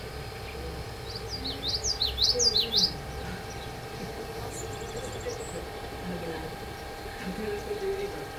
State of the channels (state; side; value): identical; both; correlation 1.00